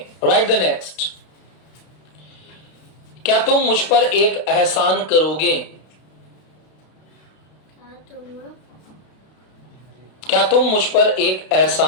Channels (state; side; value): late; right; 32 ms